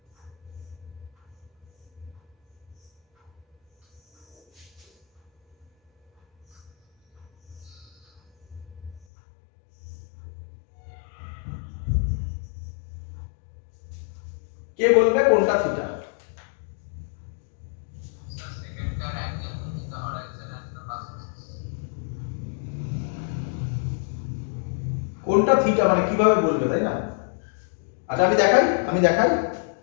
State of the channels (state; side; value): drops out; right; at 9.1 s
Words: কে বলবে কোনটা theta? Sir, second car angle between the horizon and the axis. কোনটা থিটা মানে কিভাবে বলবে, তাই না? আচ্ছা আমি দেখাই,